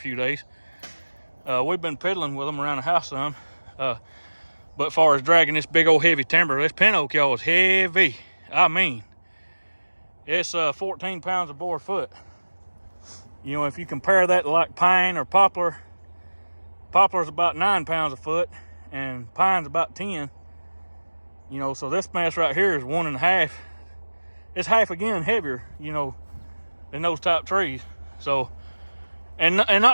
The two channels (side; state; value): both; inverted; correlation -1.00